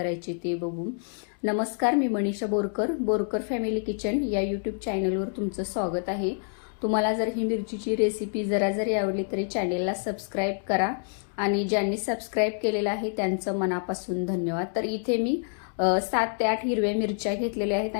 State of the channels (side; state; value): right; silent; 60 dB below the other